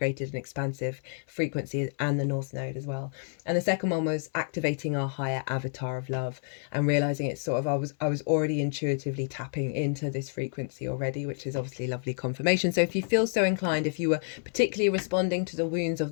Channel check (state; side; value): silent; right; 58 dB below the other